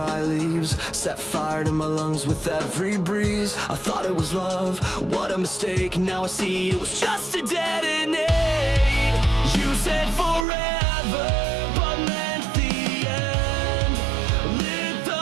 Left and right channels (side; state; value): left; drops out; at 10.5 s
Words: leaves, set fire to my lungs with every breeze. I thought it was love, what a mistake. Now I see it was just a detonate. You said forever, but meant the end. Lit